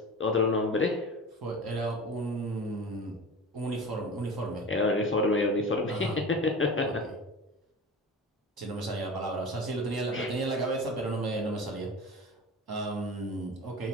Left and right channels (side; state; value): both; normal; correlation 0.33